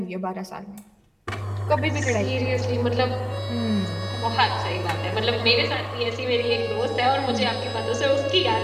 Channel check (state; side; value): identical; both; correlation 1.00